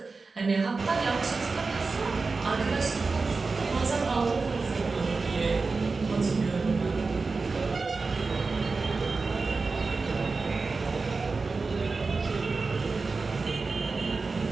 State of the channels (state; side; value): quieter; left; 4.1 dB